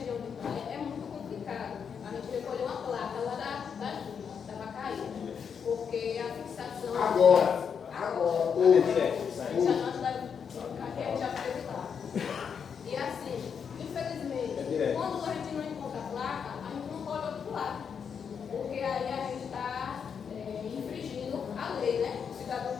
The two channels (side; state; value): right; quieter; 6.9 dB